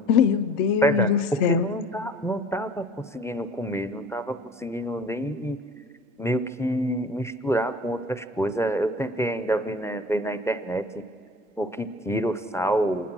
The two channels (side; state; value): both; normal; correlation 0.46